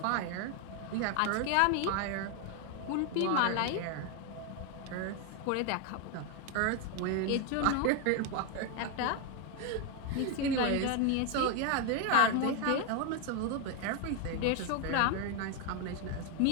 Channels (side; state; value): both; different; correlation 0.01